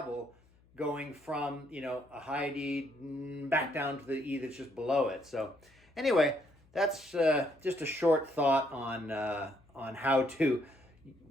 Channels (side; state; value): left; noise; hum, 30 dB below the sound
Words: going from, a high D back down to the E that's just below it. So anyway, that's just a short thought on how to